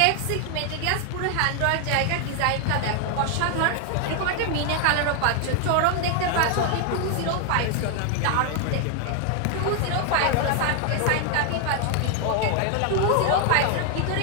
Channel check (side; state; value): both; different; correlation 0.00